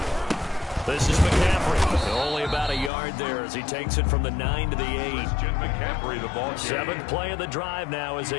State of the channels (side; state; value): right; drops out; at 2.9 s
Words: This is McCaffrey. Only about a yard there as he takes it from the 9 to the 8. McCaffrey, the ball. 7th play of the drive now as